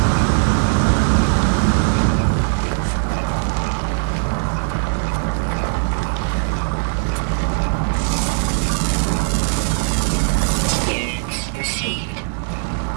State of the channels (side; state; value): left; silent; digital silence